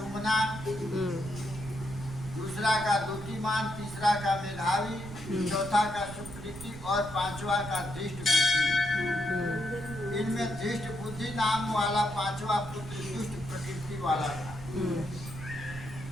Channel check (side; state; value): right; noise; rumble, 12 dB below the sound